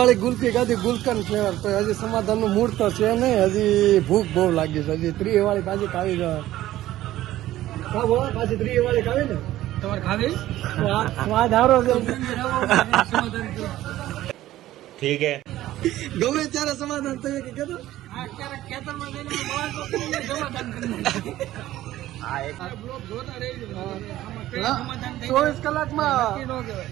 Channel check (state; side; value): quieter; left; 14.7 dB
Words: ગુલ્ફી ખાધી, ગુલકન ફ્લેવર. તો હજી સમાધાન નું મૂળ તો છે નહીં, હજી ભૂખ બહુ લાગી છે. હજી 3 વાળી પાછી ખાવી છે. પાછી 3 વાળી ખાવી ને તમારે ખાવી સ્વાદ હારો છે. ઠીક હે, ગમે ત્યારે સમાધાન થયું કે કીધું 24 કલાકમાં